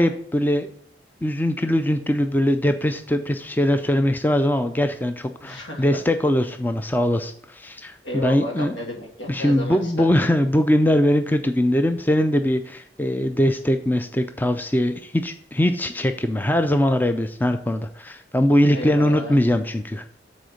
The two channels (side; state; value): both; normal; correlation 0.88